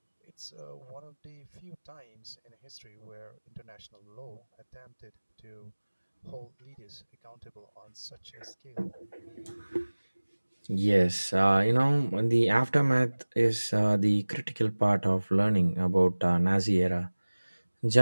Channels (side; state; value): both; inverted; correlation -1.00